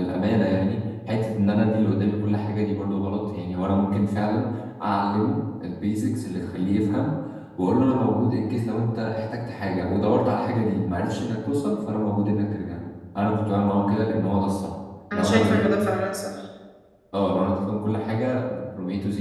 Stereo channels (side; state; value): both; identical; correlation 1.00